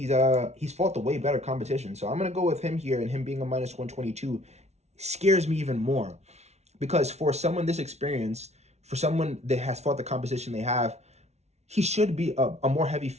fought the way better competition. So I'm going to go with him here, and him being a minus 122 scares me even more. Because for someone this experienced, for someone that has fought the competition they have, he should be a more heavy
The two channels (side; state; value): left; late; 0.32 ms